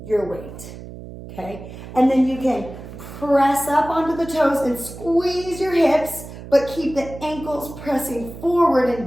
your weight, okay? And then you can press up onto the toes and squeeze your hips, but keep the ankles pressing forward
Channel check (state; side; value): noise; right; hum, 13 dB below the sound